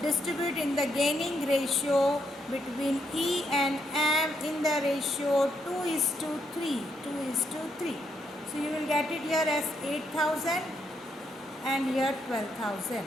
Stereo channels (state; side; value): normal; both; correlation 0.77